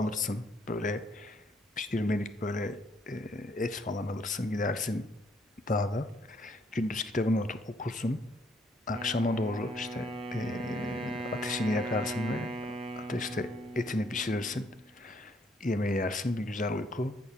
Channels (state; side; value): normal; both; correlation 0.68